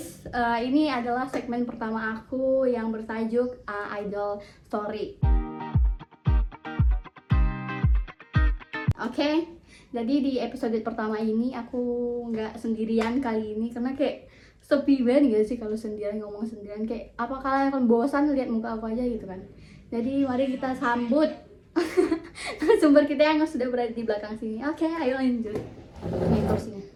ini adalah segmen pertama aku yang bertajuk Idol Story. Oke, jadi di episode pertama ini aku nggak sendirian kali ini karena kayak sepi banget gak sih kalau sendirian, ngomong sendirian. Kayak apa kalian akan bosan lihat muka aku aja gitu kan. Jadi mari kita sambut sumber kita yang sudah berada di belakang sini. Oke, ayo lanjut. Ini kursinya.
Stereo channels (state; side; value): identical; both; correlation 1.00